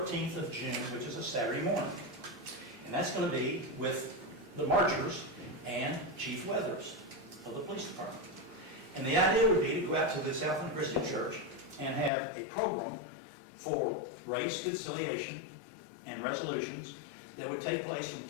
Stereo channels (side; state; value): right; drops out; at 12.1 s